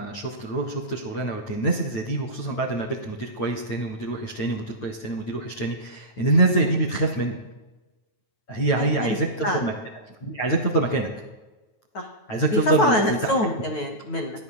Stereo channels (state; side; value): late; right; 9.3 ms